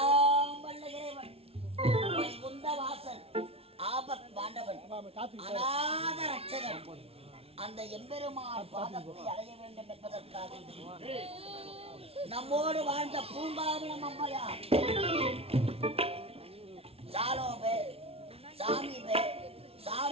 வல்ல இறைவன் வைகுந்த வாசன் ஆபத் பாண்டவன் அநாத ரட்சகன் அந்த எம்பெருமான் பாதத்தை அடைய வேண்டும் என்பதற்காக நம்மோடு வாழ்ந்த பூங்காவனம் அம்மையார் சாலோபே சாமீபே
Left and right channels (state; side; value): late; left; 0.29 ms